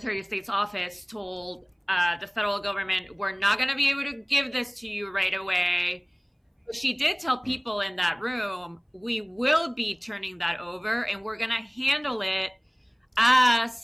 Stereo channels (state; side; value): identical; both; correlation 1.00